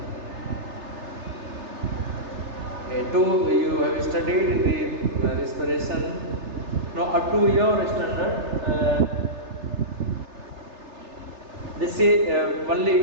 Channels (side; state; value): left; late; 3.3 ms